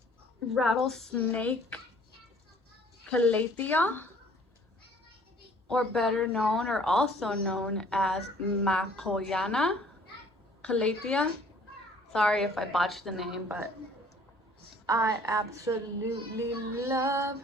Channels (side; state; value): both; normal; correlation 0.55